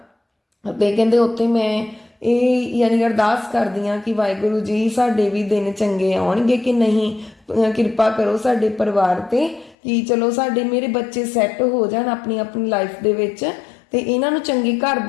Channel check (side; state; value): right; drops out; at 9.8 s